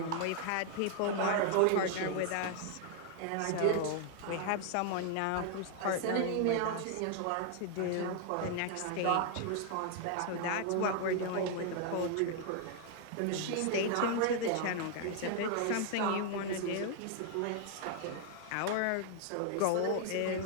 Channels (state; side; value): different; both; correlation 0.00